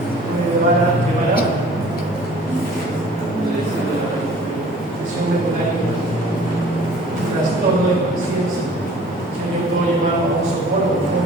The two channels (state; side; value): normal; both; correlation 0.50